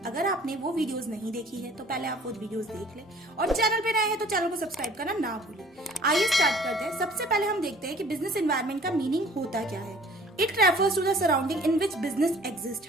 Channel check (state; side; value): normal; both; correlation 0.52